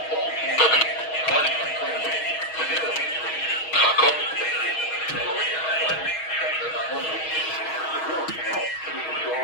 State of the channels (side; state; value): right; late; 6.3 ms